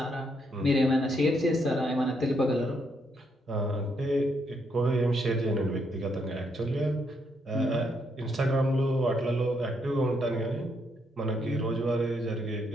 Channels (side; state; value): both; normal; correlation 0.75